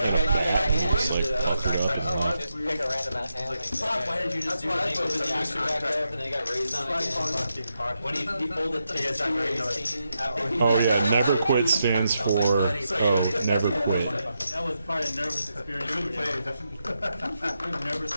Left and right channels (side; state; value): both; inverted; correlation -0.85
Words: a just like fucked it up. Just pick a random ass hand. Why did you just do it? He opened the action back up and then he got raised on again. When he folded to his Oh yeah, never quit stands for never quit. That was probably a nervous experience. We were nervous the